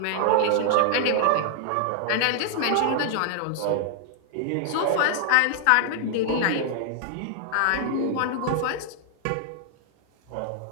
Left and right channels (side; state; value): both; different; correlation 0.00